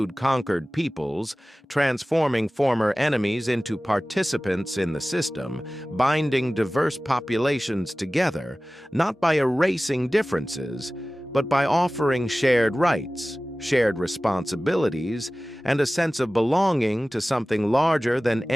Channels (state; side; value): normal; both; correlation 0.97